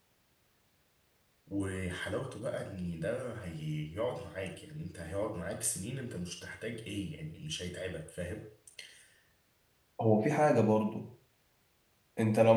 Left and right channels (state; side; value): identical; both; correlation 1.00